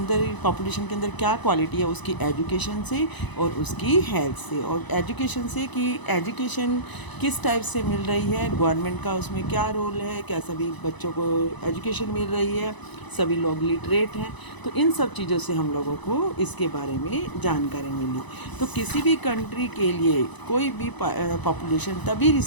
पॉपुलेशन के अंदर क्या क्वालिटी है, उसकी एजुकेशन से और उसकी हेल्थ से। और एजुकेशन से कि एजुकेशन किस टाइप से मिल रही है, गवर्नमेंट का उसमें क्या रोल है, क्या सभी बच्चों को एजुकेशन मिल रही है, सभी लोग लिटरेट हैं। तो इन सब चीज़ों से हम लोगों को इसके बारे में जानकारी मिली। तो किसी भी कंट्री के लिए कोई भी पॉपुलेशन तभी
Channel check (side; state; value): right; late; 1.0 ms